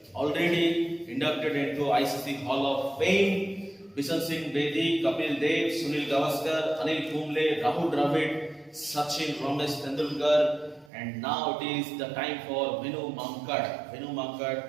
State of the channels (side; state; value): left; drops out; at 10.9 s